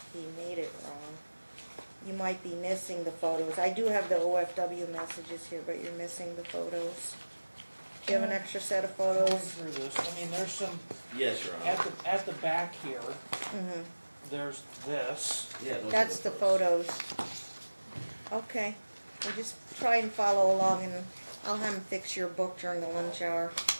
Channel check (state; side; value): inverted; both; correlation -1.00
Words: he made it wrong. You might be missing the photos. I do have the OFW messages here, but you're missing the photos. Do you have an extra set of Going photos? through this, I mean, there's some, Yes, Your Honor. at the back here, Mm-hmm. there's this. Yeah, those That's are the photos. Okay, we'll just try and follow along, and I'll have him fix your book during the lunch hour.